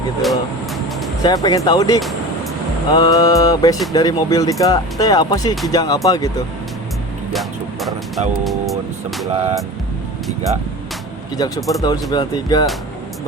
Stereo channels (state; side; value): normal; both; correlation 0.33